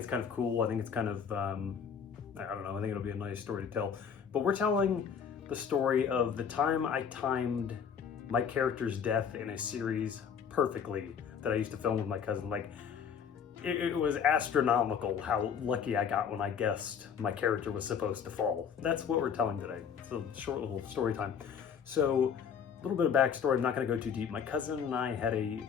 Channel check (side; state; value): right; quieter; 7.2 dB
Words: kind of cool. I think it's kind of, I don't know, I think it'll be a nice story to tell. But we're telling the story of the time I timed my character's death in a series perfectly that I used to film with my cousin. Like, it was astronomical how lucky I got when I guessed my character was supposed to fall. That's what we're telling today. It's a short little story time. So, a little bit of backstory, I'm not going to go too deep. My cousin and I had a